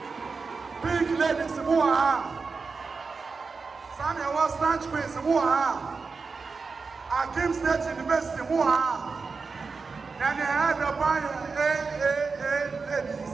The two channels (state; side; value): quieter; left; 4.6 dB